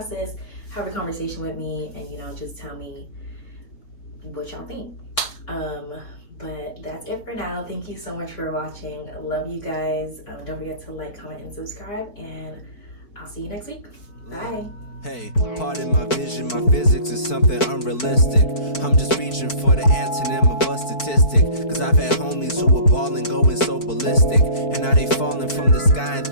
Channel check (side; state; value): right; late; 4.5 ms